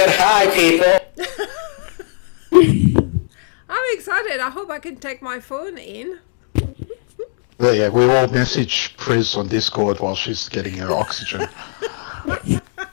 high, people. I'm excited. I hope I can take my phone in. Yeah, we all message Pris on Discord while she's getting her oxygen. Yeah,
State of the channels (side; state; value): right; silent; digital silence